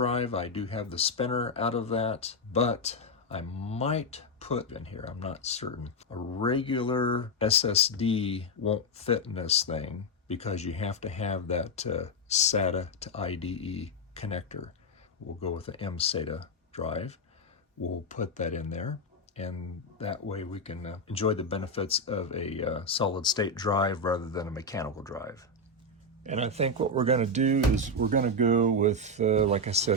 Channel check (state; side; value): normal; both; correlation 0.05